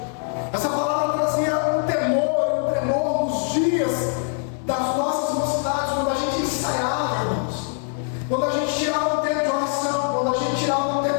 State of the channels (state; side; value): silent; right; 55 dB below the other